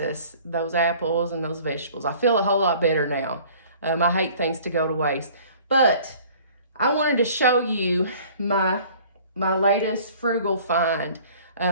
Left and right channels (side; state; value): both; inverted; correlation -0.50